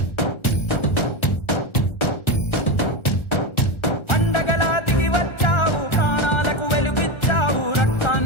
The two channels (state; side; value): late; right; 1.4 ms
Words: పండగలా దిగి వచ్చావు, ప్రాణాలకు వెలుగిచ్చావు,